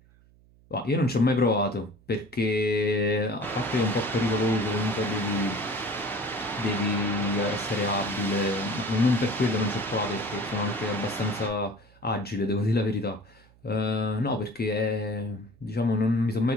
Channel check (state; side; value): noise; right; hum, 28 dB below the sound